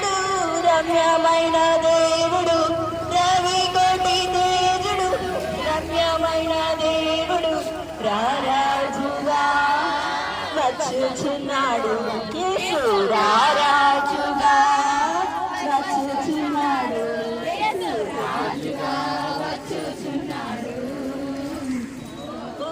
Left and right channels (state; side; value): identical; both; correlation 1.00